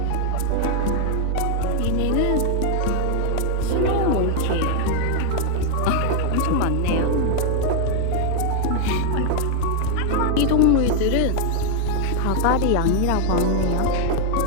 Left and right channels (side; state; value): both; different; correlation 0.00